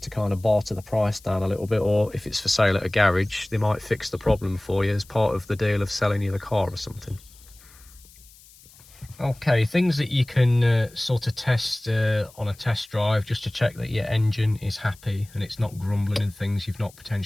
to kind of barter the price down a little bit, or if it's for sale at a garage, they might fix the problem for you as part of the deal of selling you the car or something. Okay, things that you can sort of test on a test drive just to check that your engine is happy and it's not grumbling and things, you've not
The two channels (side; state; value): left; noise; hiss, 24 dB below the sound